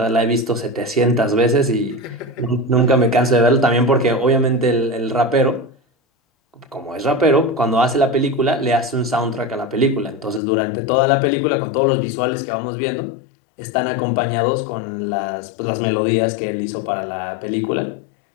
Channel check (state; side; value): drops out; right; at 10.4 s